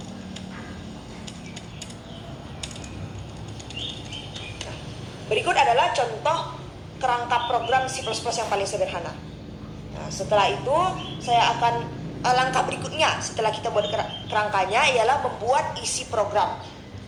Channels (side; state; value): both; identical; correlation 1.00